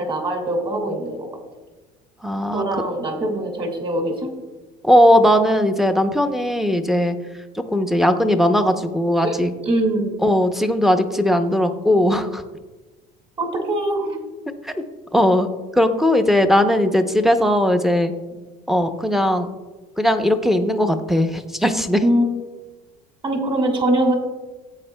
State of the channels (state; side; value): normal; both; correlation 0.78